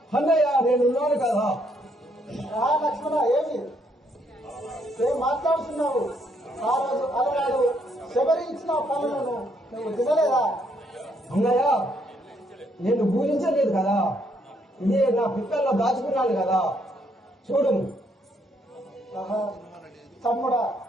అన్నయ్య, నేనున్నాను కదా. లక్ష్మణ, ఏం మాట్లాడుతున్నావు? ఆ రోజు అలనాడు శబరి ఇచ్చిన పనులను నువ్వు తినలేదా? అన్నయ్య, నేను పూజించలేదు కదా, ఇదే నా పిక్కల్లో దాచుకున్నాను కదా. చూడు తమ్ముడా,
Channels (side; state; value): both; normal; correlation 0.71